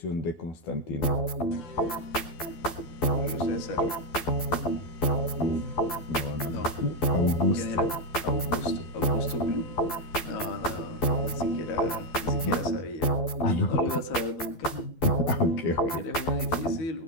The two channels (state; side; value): late; right; 12 ms